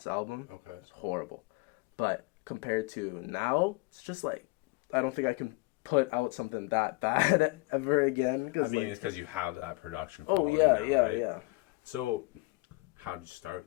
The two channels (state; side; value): quieter; right; 24.6 dB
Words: album. Okay. It's horrible, but compared to now, it's just like I don't think I can put out something that bad ever again. I mean, like, it's because you have that production quality now, right? Yeah. So, how did you